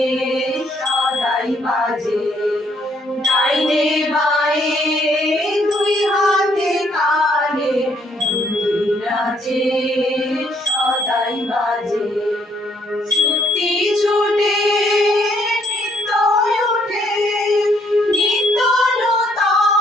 সদাই বাজে ডাইনে বায়ে দুই হাতে কালে মন্দিরাজে সদাই বাজে শক্তি ছুটে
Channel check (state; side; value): normal; both; correlation 0.68